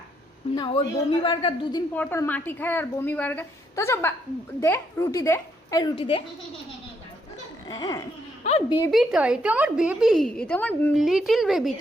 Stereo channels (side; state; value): both; normal; correlation 0.74